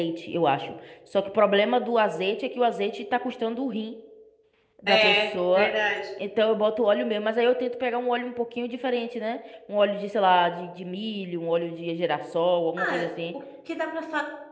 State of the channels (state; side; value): identical; both; correlation 1.00